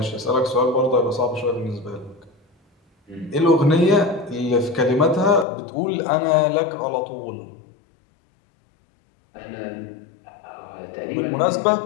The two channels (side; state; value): right; drops out; at 5.5 s